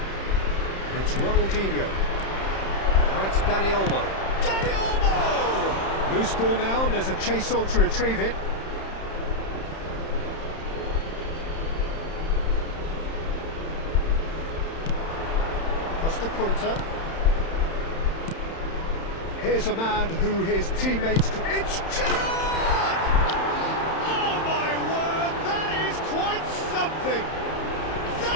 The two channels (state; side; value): late; right; 31 ms